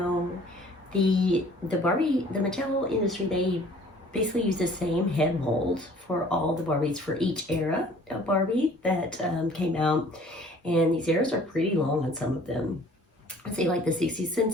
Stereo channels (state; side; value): normal; both; correlation 0.53